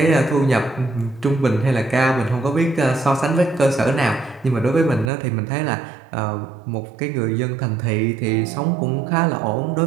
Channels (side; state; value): left; drops out; at 5.1 s